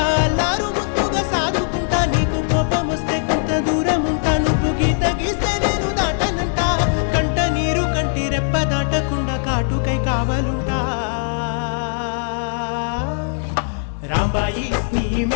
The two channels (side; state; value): right; silent; digital silence